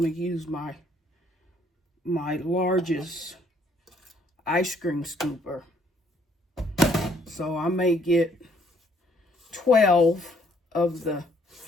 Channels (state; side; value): normal; both; correlation 0.65